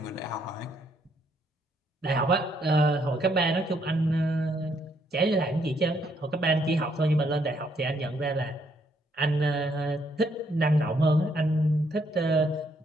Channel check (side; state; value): both; normal; correlation 0.71